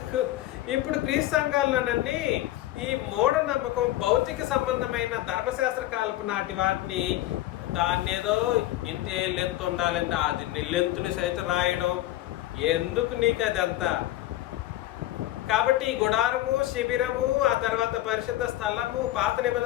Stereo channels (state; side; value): quieter; right; 15.0 dB